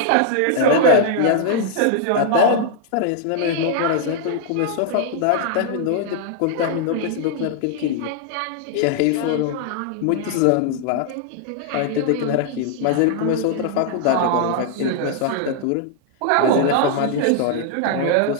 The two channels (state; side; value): different; both; correlation -0.01